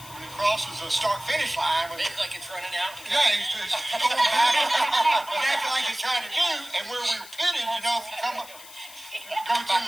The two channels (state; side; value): noise; left; hiss, 17 dB below the sound